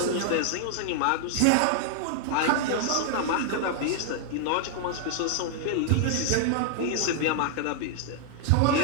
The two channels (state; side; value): different; both; correlation 0.00